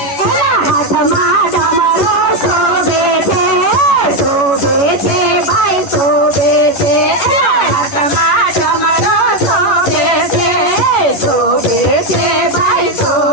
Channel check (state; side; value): late; right; 11 ms